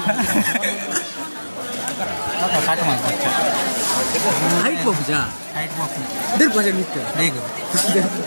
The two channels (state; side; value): inverted; both; correlation -1.00